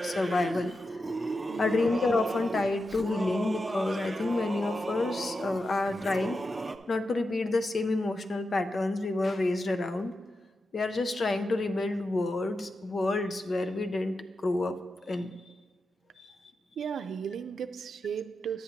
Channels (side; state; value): both; normal; correlation 0.89